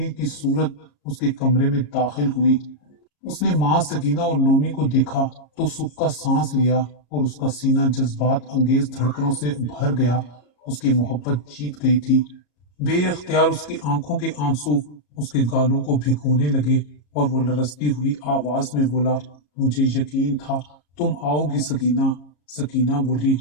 की सूरत उसके कमरे में दाखिल हुई। उसने माँ सकीना और नोमी को देखा तो सुख का सांस लिया और उसका सीना जज्बात अंगेज धड़कनों से भर गया। उसकी मोहब्बत जीत गई थी। बेअख्तियार उसकी आंखों के आंसू उसके गालों को भिगोने लगे और वो लरसती हुई आवाज में बोला, मुझे यकीन था तुम आओगी सकीना। सकीना बोली,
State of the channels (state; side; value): late; right; 34 ms